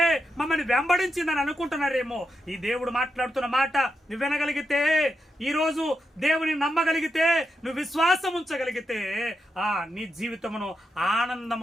మమ్మల్ని వెంబడించిందని అనుకుంటున్నారేమో. ఈ దేవుడు మాట్లాడుతున్న మాట నువ్వు వినగలిగితే, ఈ రోజు దేవుని నమ్మగలిగితే, నువ్వు విశ్వాసం ఉంచగలిగితే నీ జీవితమును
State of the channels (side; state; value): both; normal; correlation 0.85